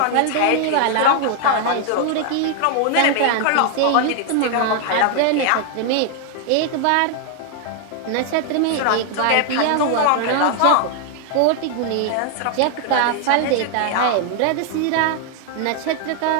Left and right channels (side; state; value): both; different; correlation 0.00